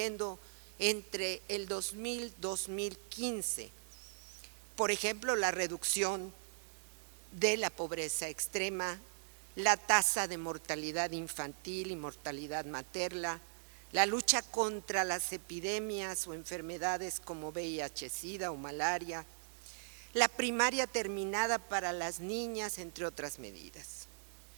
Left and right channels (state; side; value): silent; left; digital silence